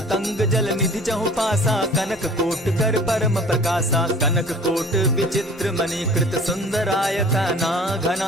जल निधि चहु पासा, कनक कोट कर परम प्रकाशा। कनक कोट विचित्र मणि कृत सुंदरायता ना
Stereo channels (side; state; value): both; normal; correlation 0.46